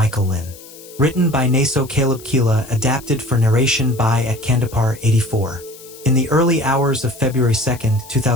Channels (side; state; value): left; noise; hiss, 20 dB below the sound